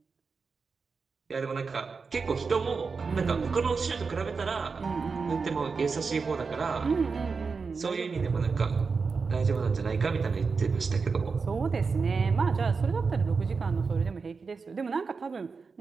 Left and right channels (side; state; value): left; quieter; 4.9 dB